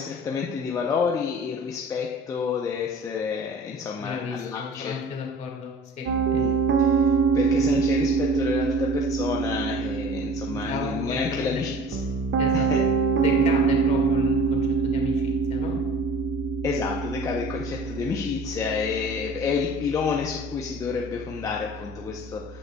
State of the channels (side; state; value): both; normal; correlation 0.44